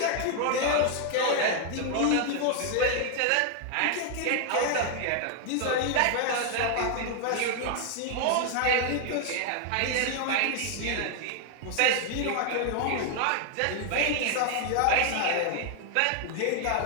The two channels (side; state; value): both; different; correlation 0.00